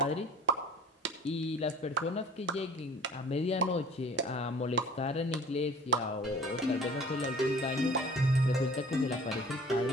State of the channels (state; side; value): normal; both; correlation 0.47